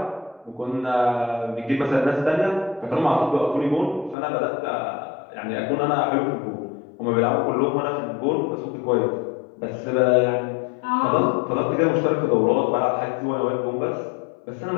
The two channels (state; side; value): drops out; right; at 4.2 s